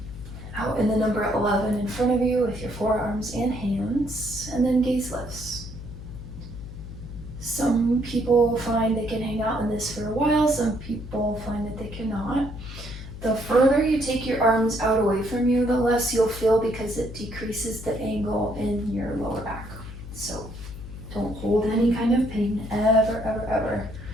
Out in the number 11 in front of you with your forearms and hands, and then gaze lifts. Some people find they can hang out in this for a while, some people find that they cannot. The further you take your arms out away from you, the less you'll feel because it decreases the angle in your lower back. So don't hold any kind of pain, ever, ever, ever.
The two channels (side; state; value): left; noise; hum, 11 dB below the sound